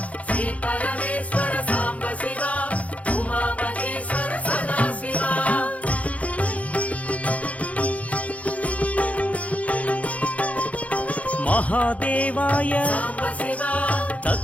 శ్రీ పరమేశ్వర సాంబశివా ఉమామహేశ్వర సదాశివా మహాదేవాయ సాంబ శివ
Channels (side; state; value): right; late; 0.067 ms